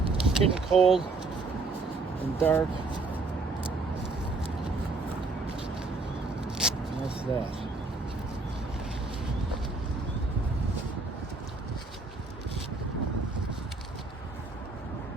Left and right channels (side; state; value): left; quieter; 3.6 dB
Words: It's getting cold and dark. And that's that.